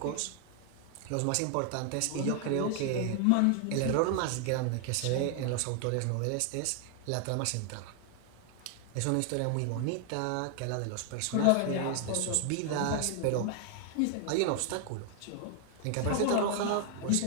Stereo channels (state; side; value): different; both; correlation 0.00